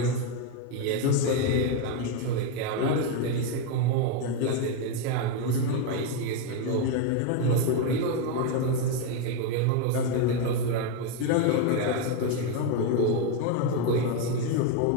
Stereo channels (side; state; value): both; different; correlation 0.02